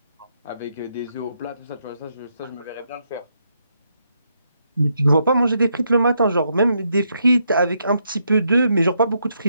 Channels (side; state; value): both; inverted; correlation -0.78